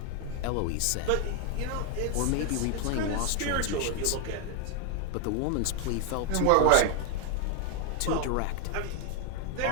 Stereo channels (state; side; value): different; both; correlation 0.00